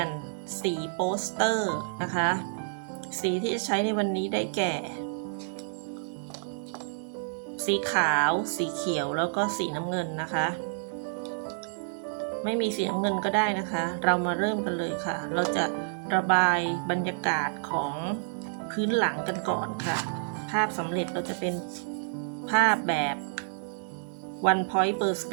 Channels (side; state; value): left; silent; 59 dB below the other